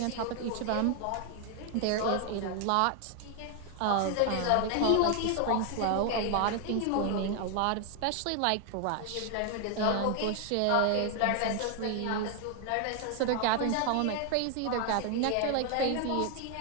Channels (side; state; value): both; different; correlation 0.00